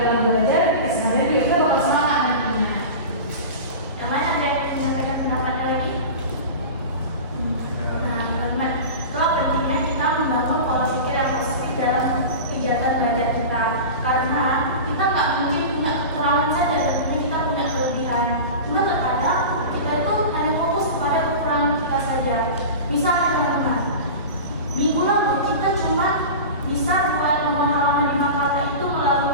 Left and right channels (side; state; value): both; inverted; correlation -0.30